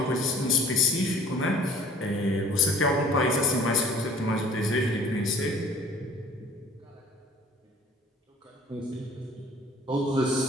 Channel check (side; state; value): both; normal; correlation 0.49